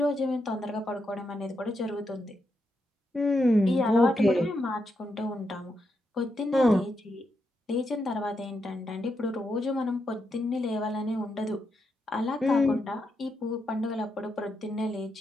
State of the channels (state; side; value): normal; both; correlation 0.83